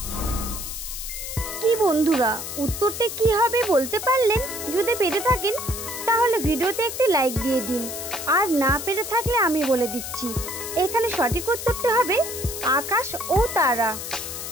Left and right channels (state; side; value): noise; left; hiss, 7 dB below the sound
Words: কি বন্ধুরা, উত্তরটি কি হবে বলতে পারলেন? যদি পেরে থাকেন তাহলে ভিডিওতে একটি লাইক দিয়ে দিন। আর না পেরে থাকলে আমি বলে দিচ্ছি, এখানে সঠিক উত্তরটি হবে আকাশ ও তারা।